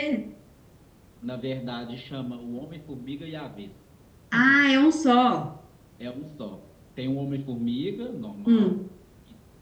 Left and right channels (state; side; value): identical; both; correlation 1.00